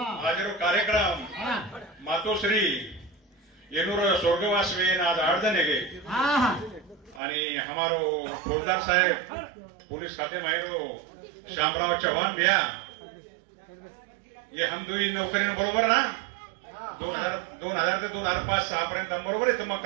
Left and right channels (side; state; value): left; drops out; at 7.2 s